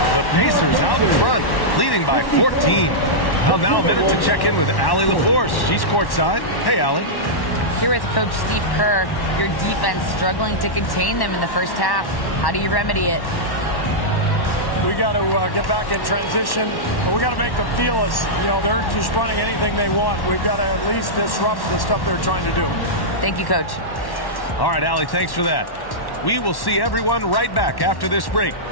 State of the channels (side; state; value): right; late; 1.1 ms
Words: The Pacers out in front, leading by 14. Well, now a minute to check in with Allie LaForce. She's courtside. Hey, Allie. Here with Coach Steve Kerr, your defense struggling to contain them in the first half. How do you remedy it? We got to get back in transition. We got to make them feel us. You know, they're just running anything they want. We've got to at least disrupt the stuff they're trying to do. Thank you, Coach. All right, Allie, thanks for that. We will see everyone right back after this break,